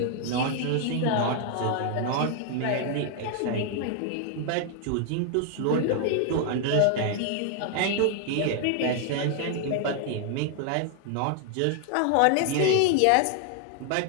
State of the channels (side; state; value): both; different; correlation 0.00